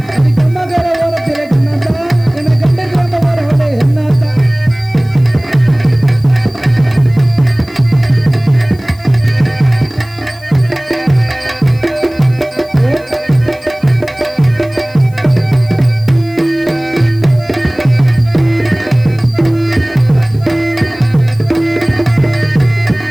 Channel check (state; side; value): noise; left; hiss, 27 dB below the sound